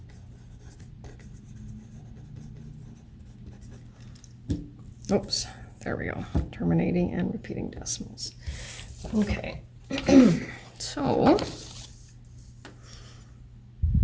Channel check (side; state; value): both; identical; correlation 1.00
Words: Oops, there we go. Terminating and repeating decimals. Okay, so